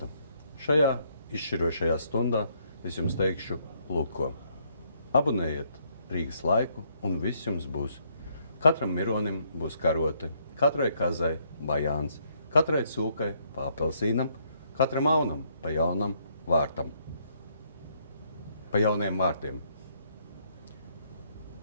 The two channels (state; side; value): inverted; both; correlation -0.71